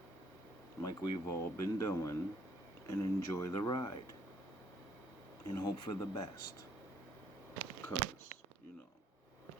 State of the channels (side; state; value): both; normal; correlation 0.66